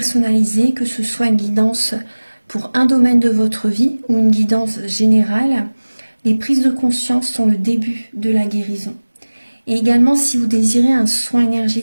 que ce soit une guidance pour un domaine de votre vie ou une guidance générale. Les prises de conscience sont le début de la guérison. Et également si vous désirez un soin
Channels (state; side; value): inverted; both; correlation -1.00